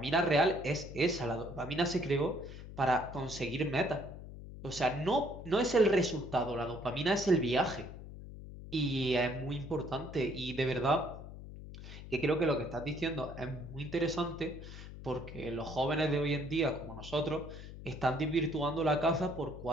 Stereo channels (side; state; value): left; noise; hum, 13 dB below the sound